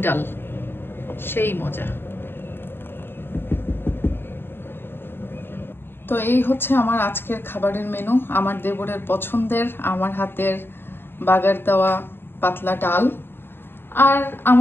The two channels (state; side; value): late; right; 0.10 ms